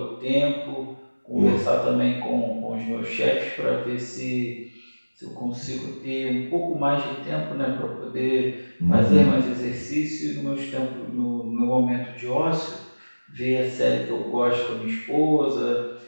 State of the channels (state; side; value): inverted; both; correlation -1.00